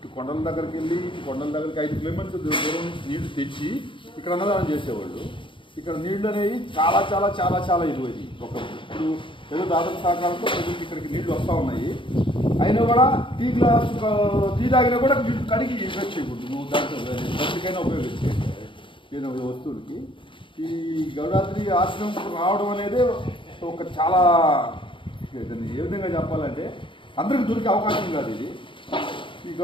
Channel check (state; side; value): late; right; 0.24 ms